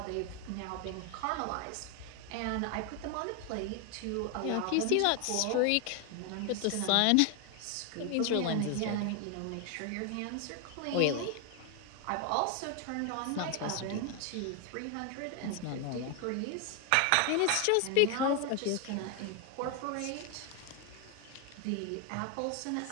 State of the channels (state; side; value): different; both; correlation 0.01